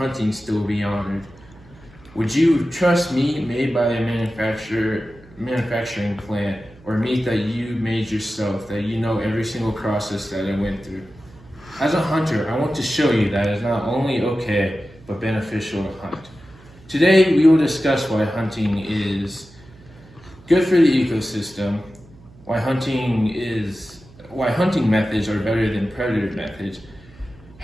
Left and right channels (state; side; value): noise; right; hum, 24 dB below the sound